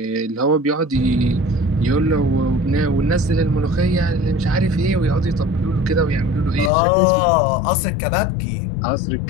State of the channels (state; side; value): drops out; right; at 6.7 s